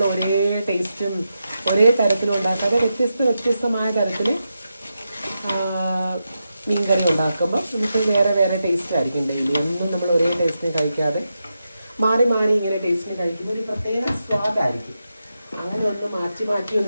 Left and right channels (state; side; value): inverted; both; correlation -0.88